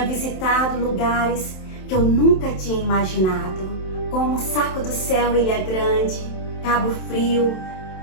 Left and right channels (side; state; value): right; late; 27 ms